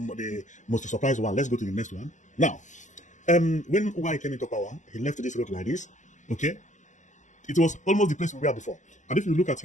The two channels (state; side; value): late; right; 0.35 ms